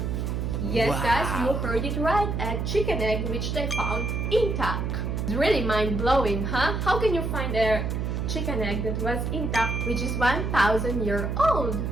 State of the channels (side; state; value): right; noise; hum, 1 dB below the sound